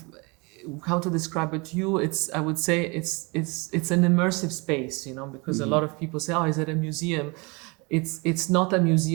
how to describe it to you? I would say it's an immersive space, you know, because a lot of people say, "Oh, is it a museum?" It's not a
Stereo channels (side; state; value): left; quieter; 28.7 dB